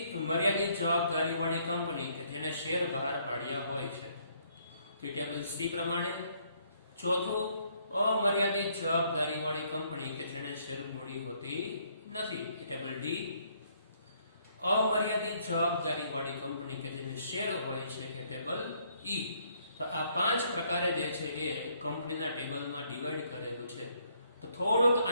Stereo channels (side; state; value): both; inverted; correlation -0.68